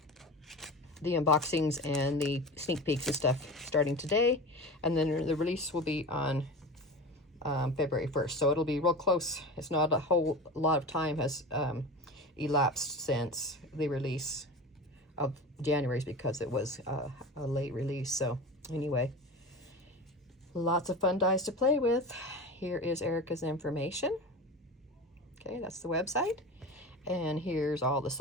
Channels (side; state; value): both; normal; correlation 0.30